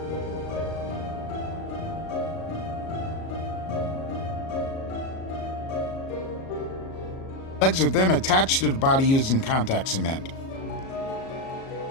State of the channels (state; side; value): late; right; 37 ms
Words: Legs are then attached to the body using contact cement.